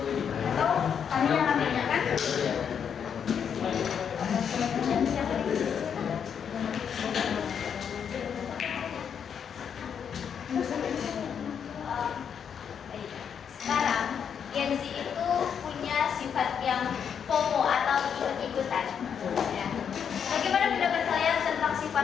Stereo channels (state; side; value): quieter; right; 7.6 dB